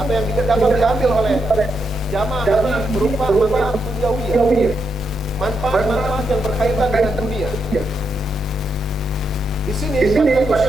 yang dapat diambil oleh jamaah haji berupa manfaat duniawiyah, manfaat-manfaat yang berkaitan dengan dunia. Di sini Fadilatul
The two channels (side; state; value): both; normal; correlation 0.81